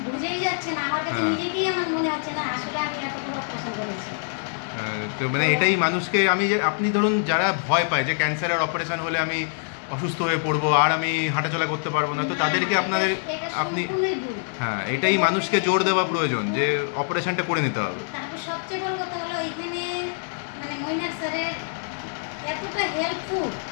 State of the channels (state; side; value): silent; right; digital silence